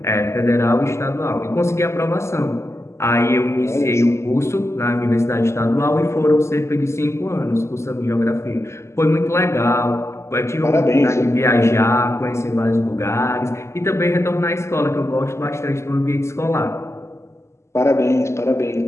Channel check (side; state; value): right; late; 0.13 ms